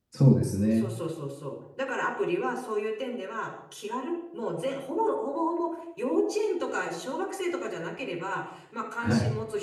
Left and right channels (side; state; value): both; identical; correlation 1.00